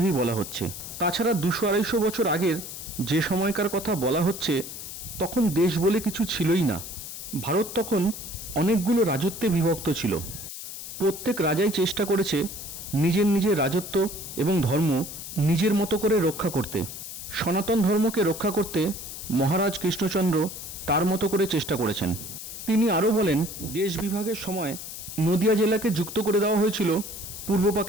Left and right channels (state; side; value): noise; left; hiss, 10 dB below the sound